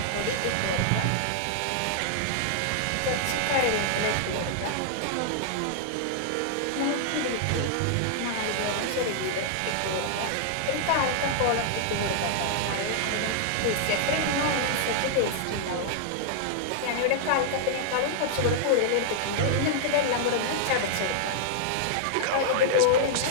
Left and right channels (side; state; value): both; different; correlation -0.01